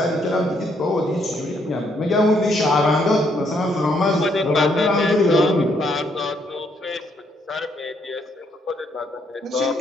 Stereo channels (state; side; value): normal; both; correlation 0.72